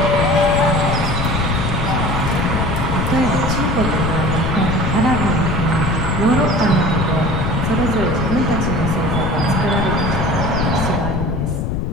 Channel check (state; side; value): noise; left; rumble, 1 dB below the sound